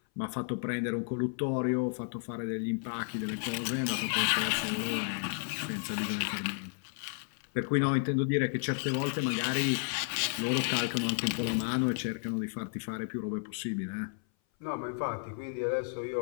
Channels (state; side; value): silent; right; 56 dB below the other